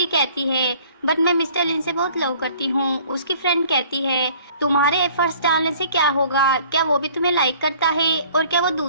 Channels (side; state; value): both; inverted; correlation -0.53